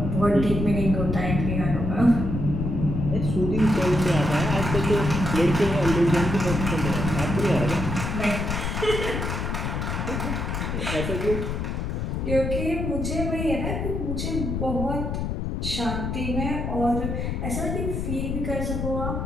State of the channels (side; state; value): left; noise; rumble, 2 dB below the sound